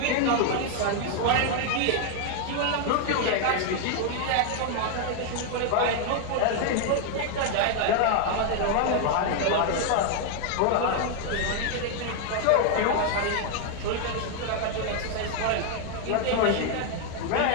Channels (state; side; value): different; both; correlation 0.00